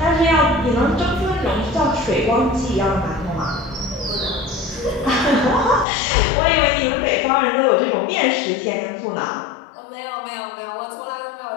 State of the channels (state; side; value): drops out; right; at 5.9 s